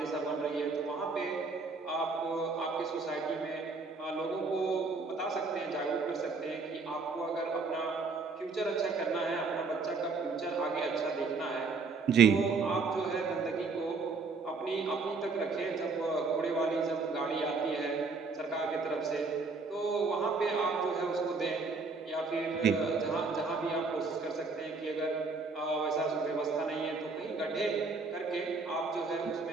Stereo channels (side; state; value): left; quieter; 4.2 dB